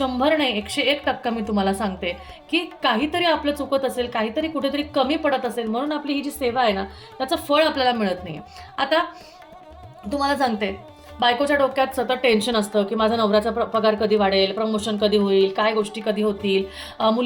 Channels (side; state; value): both; identical; correlation 1.00